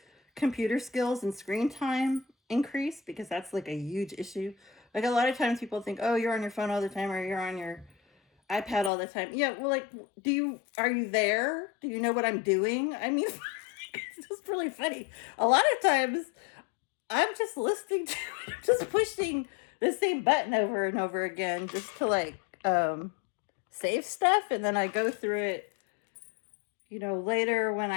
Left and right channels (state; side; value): drops out; right; at 8.9 s